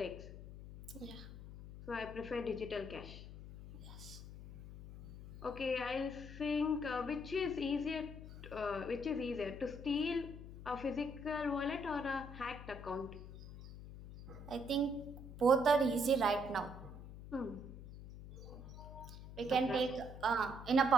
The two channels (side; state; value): left; noise; hum, 12 dB below the sound